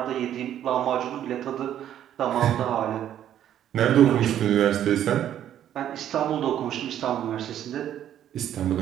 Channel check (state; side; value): quieter; left; 10.9 dB